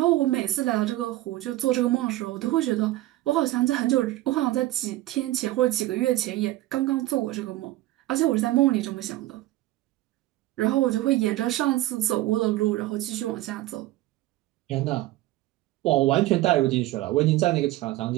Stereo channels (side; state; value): left; quieter; 16.4 dB